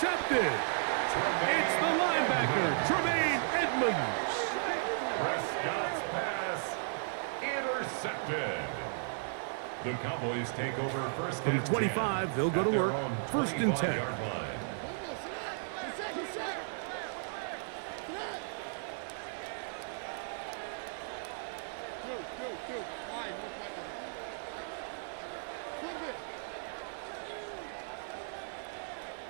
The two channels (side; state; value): left; silent; 54 dB below the other